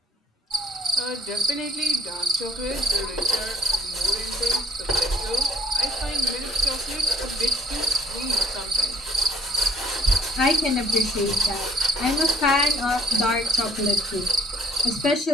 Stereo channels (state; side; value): normal; both; correlation 0.54